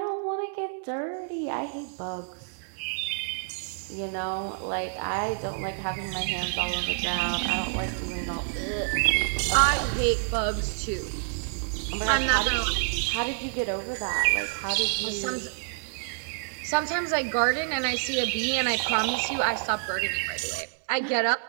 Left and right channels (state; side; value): silent; left; 59 dB below the other